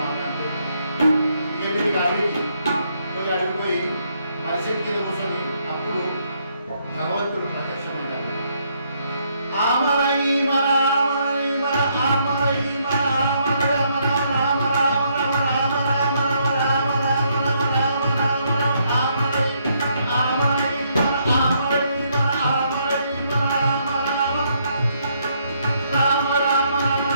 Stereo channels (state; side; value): inverted; both; correlation -0.73